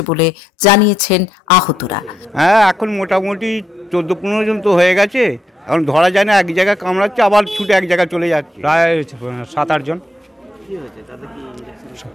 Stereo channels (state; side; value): normal; both; correlation 0.80